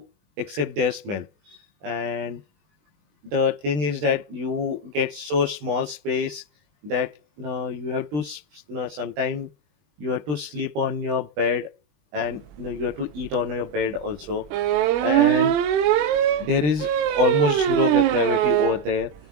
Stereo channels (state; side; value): late; left; 20 ms